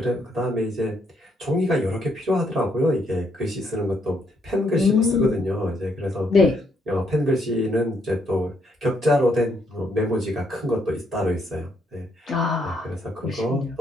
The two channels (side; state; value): both; normal; correlation 0.73